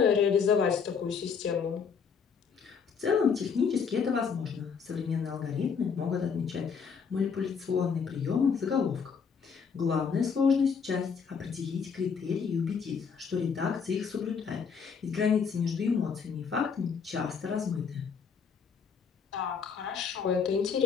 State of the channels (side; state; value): right; quieter; 6.2 dB